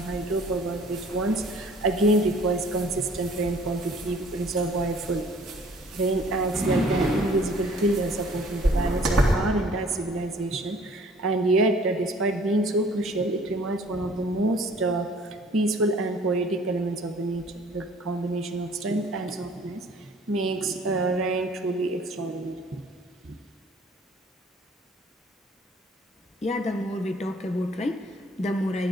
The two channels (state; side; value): normal; both; correlation 0.54